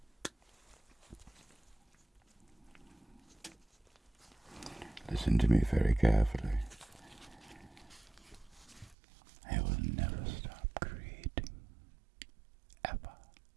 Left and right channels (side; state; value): left; drops out; at 9.0 s